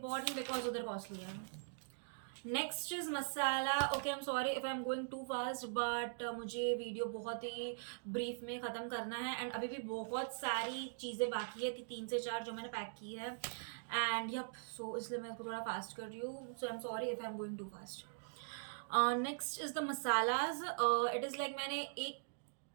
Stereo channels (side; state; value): left; silent; digital silence